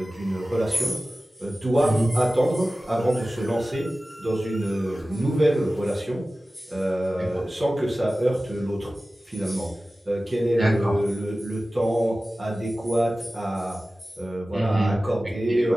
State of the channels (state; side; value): normal; both; correlation 0.96